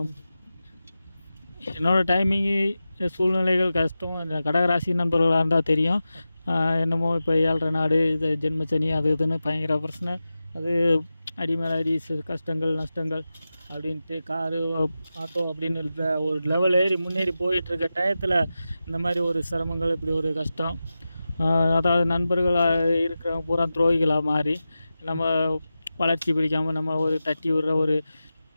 என்னோடய டைமிங்கு சூழ்நிலைகள் கஷ்டம். இந்த கடகராசி நண்பர்களாக இருந்தால் தெரியும். என்னமோ இப்போ 7.5 நாடு, இது ஜென்மச்சனி, அது இதுன்னு பயங்கர பிரச்சனை. அது அடிமேல் அடி, கஷ்டங்கள் நஷ்டங்கள் அப்படின்ட்டு காரு ஆட்டோ அப்படின்னு ஒரு லெவல் ஏறி முன்னேறி போயிட்டுருக்க டயத்தில் இந்த மாதிரி ஒரு சிரமங்கள், இப்படி ஒரு கஷ்டம். அதாவது நண்பர்களாக இருக்கிறவங்க பூரா துரோகிகளாக மாறி நம்ம வளர்ச்சி பிடிக்காமல் நம்ம ஒரு தட்டி விடுற ஒரு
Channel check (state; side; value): inverted; both; correlation -0.93